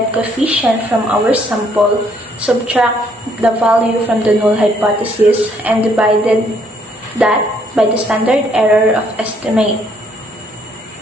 coefficient from our sample, subtract the value from the null hypothesis, and divided that by the standard error of estimate.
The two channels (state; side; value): normal; both; correlation 0.67